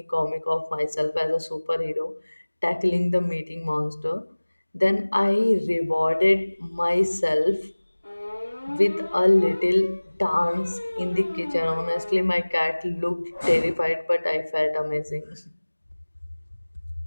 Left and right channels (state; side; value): inverted; both; correlation -1.00